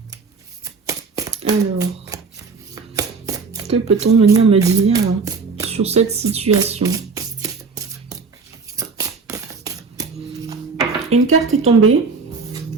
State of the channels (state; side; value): quieter; left; 4.7 dB